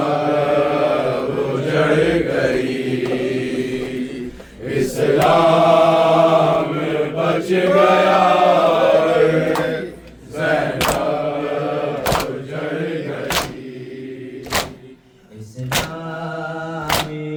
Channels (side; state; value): both; identical; correlation 1.00